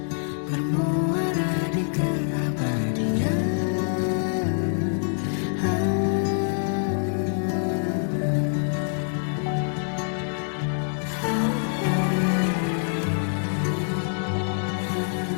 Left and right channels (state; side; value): silent; right; 61 dB below the other